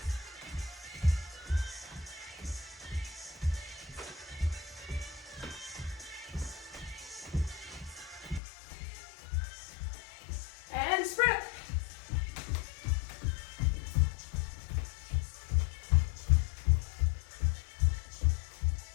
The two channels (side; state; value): right; drops out; at 8.4 s